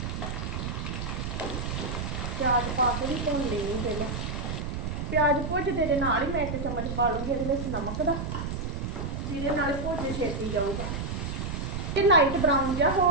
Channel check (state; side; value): noise; right; rumble, 4 dB below the sound